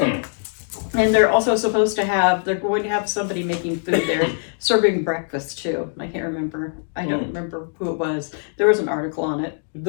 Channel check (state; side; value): silent; right; 59 dB below the other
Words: And they're also supposed to have, they're going to have somebody making food there, serving breakfast too. I can't remember. I don't remember who it was. There was an article on it.